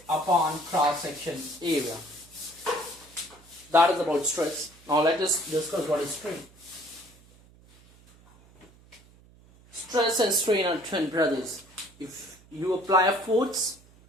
upon cross-section area. That is about stress. Now let us discuss what is strain. Stress and strain are twin brothers. If you apply a force,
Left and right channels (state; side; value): noise; right; hum, 26 dB below the sound